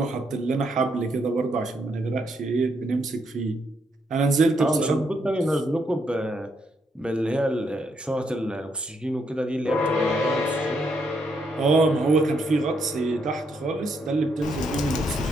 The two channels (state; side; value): normal; both; correlation 0.76